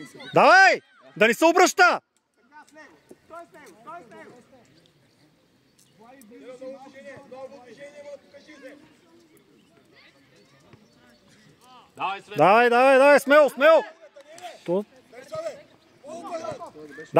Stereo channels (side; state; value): both; identical; correlation 1.00